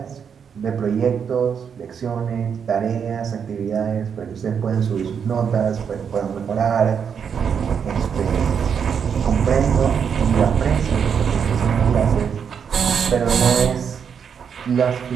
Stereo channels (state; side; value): quieter; left; 7.1 dB